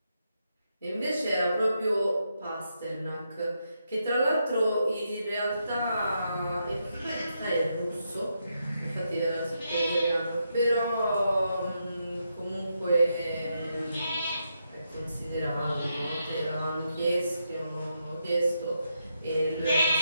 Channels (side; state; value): both; inverted; correlation -0.82